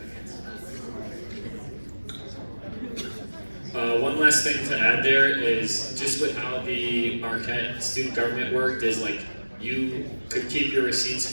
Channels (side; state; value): both; inverted; correlation -1.00